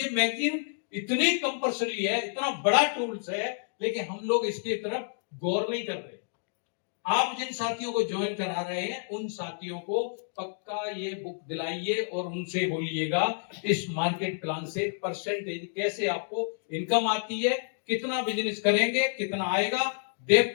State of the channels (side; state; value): right; silent; digital silence